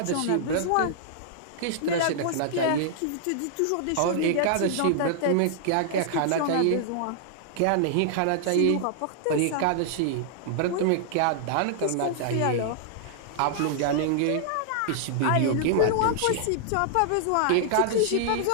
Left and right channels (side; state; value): both; different; correlation -0.01